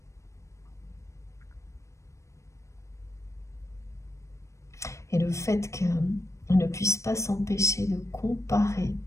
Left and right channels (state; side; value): late; right; 0.15 ms